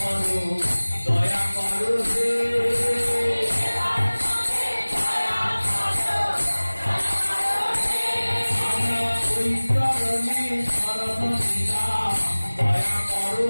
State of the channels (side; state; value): both; inverted; correlation -1.00